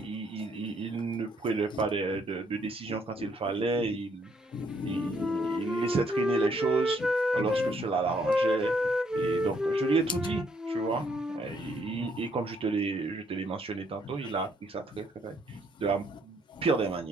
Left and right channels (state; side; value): normal; both; correlation 0.70